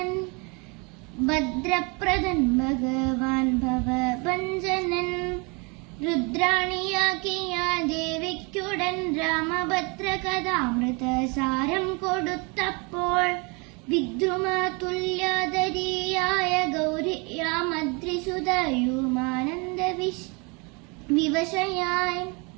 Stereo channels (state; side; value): quieter; left; 30.3 dB